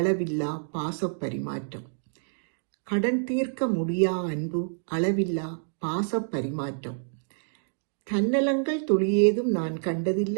பாச பரிமாற்றம். கடன் தீர்க்க முடியா அன்பு, அளவில்லா பாச பரிமாற்றம். தன்னலங்கள் துளியேதும் நான்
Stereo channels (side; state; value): left; silent; digital silence